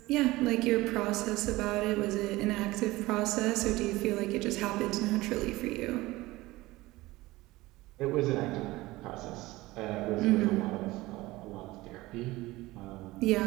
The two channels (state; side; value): quieter; left; 19.4 dB